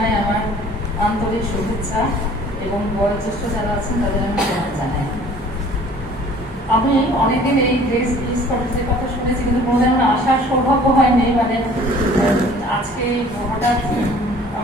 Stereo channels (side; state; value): both; normal; correlation 0.51